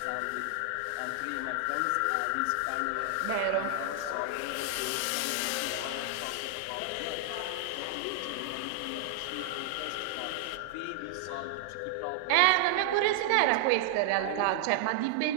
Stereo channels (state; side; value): different; both; correlation -0.01